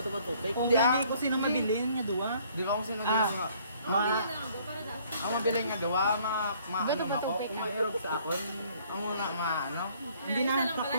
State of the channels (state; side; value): inverted; both; correlation -0.60